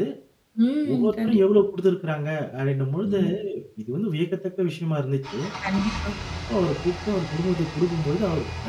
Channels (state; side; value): identical; both; correlation 1.00